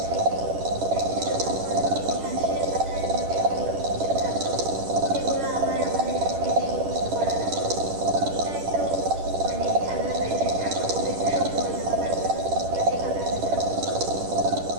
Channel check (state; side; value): late; left; 10 ms